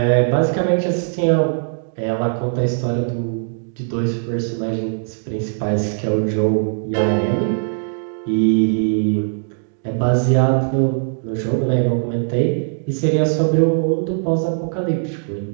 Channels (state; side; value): silent; left; digital silence